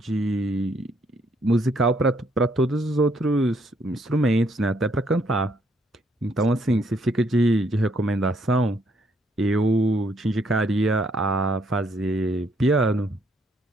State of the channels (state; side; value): normal; both; correlation 0.70